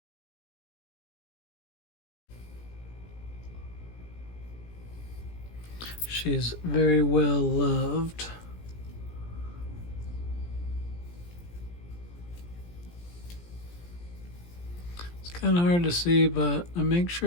She's very well loved. It's kind of hard to see, but I make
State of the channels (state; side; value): late; right; 17 ms